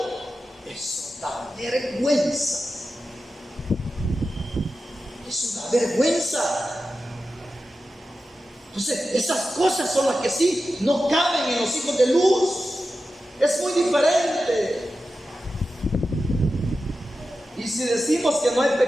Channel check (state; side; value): normal; both; correlation 0.92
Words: Eso da vergüenza. Eso da vergüenza. Entonces, esas cosas son las que sí no caben en los hijos de luz. Es muy diferente. Y si decimos que no hay